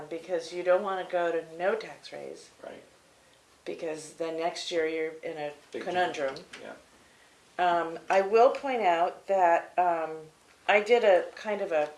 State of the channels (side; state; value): both; identical; correlation 1.00